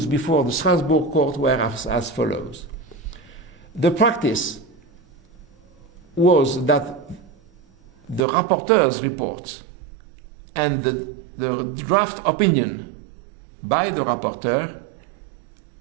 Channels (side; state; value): left; drops out; at 8.2 s